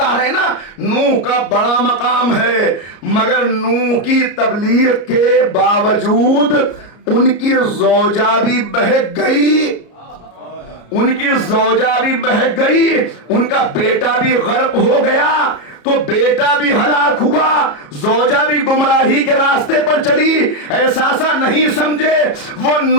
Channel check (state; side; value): late; right; 34 ms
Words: رہے ہیں نا, نوح کا بڑا مقام ہے, مگر نوح کی تبلیغ کے باوجود ان کی زوجہ بھی بہک گئی, ان کی زوجہ بھی بہک گئی, ان کا بیٹا بھی غرق ہو گیا, تو بیٹا بھی ہلاک ہوا, زوجہ بھی گمراہی کے راستے پر چلی. احساسا نہیں سمجھے, وہ